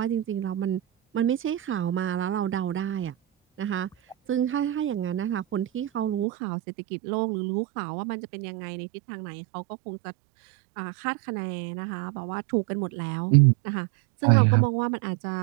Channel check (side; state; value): left; drops out; at 6.2 s